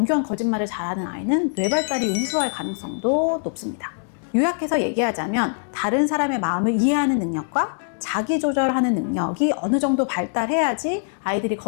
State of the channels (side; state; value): right; silent; digital silence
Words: 거짓말을 잘하는 아이는 뇌발달이 우수할 가능성도 높습니다. 요약해서 얘기하자면 다른 사람의 마음을 이해하는 능력과 자기 조절하는 능력이 어느 정도 발달해야지 아이들이